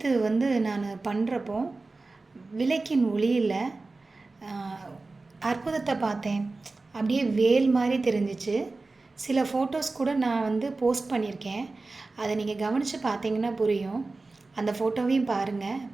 நான் பண்ணுறப்போ விளக்கின் ஒளியில் அற்புதத்தை பார்த்தேன். அப்படியே வேல் மாதிரி தெரிஞ்சிச்சு. சில ஃபோட்டோஸ் கூட நான் போஸ்ட் பண்ணியிருக்கேன். அதை நீங்கள் கவனித்து பார்த்தீங்கன்னா புரியும். அந்த ஃபோட்டோவையும் பாருங்கள்.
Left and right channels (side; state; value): left; quieter; 3.5 dB